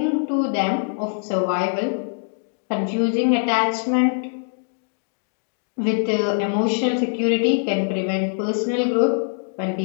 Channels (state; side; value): silent; right; digital silence